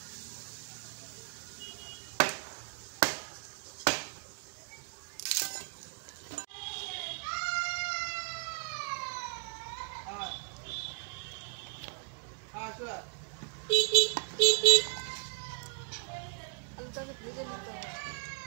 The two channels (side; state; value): left; quieter; 36.5 dB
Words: আলুটাকে ভেজে নিতে হবে।